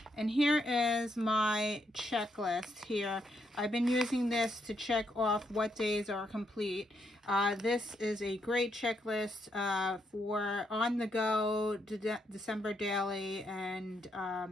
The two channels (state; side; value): normal; both; correlation 0.78